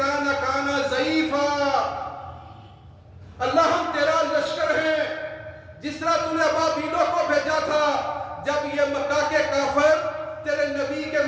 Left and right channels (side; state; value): both; identical; correlation 1.00